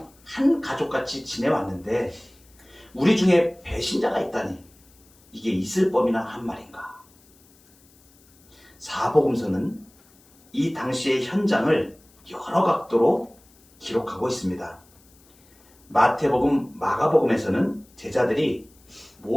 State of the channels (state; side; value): noise; left; hiss, 29 dB below the sound